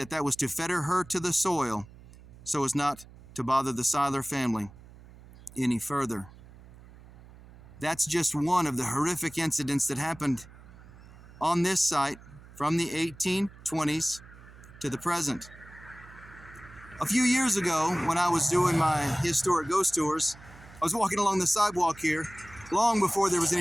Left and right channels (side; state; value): right; noise; hum, 20 dB below the sound